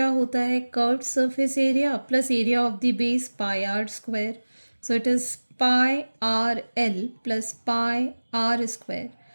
होता है? Curved surface area plus area of the base pi r square. So it is pi are l plus pi r square.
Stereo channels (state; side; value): inverted; both; correlation -1.00